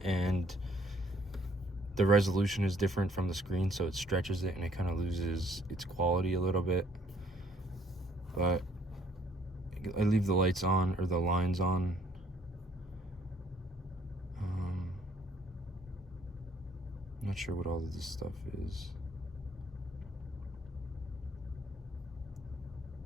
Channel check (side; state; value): both; normal; correlation 0.63